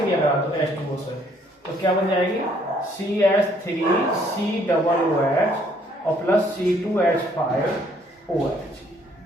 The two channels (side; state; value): both; normal; correlation 0.65